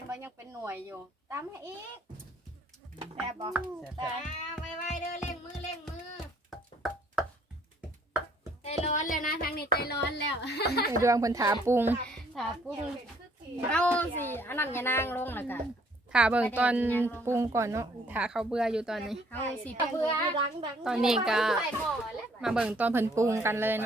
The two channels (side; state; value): both; normal; correlation 0.62